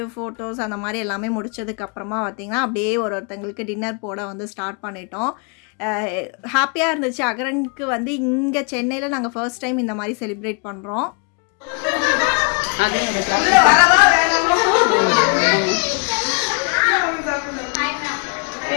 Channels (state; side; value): quieter; right; 34.8 dB